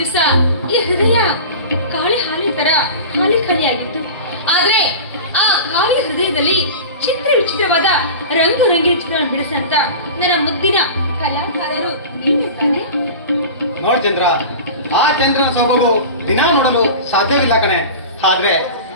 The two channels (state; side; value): inverted; both; correlation -0.33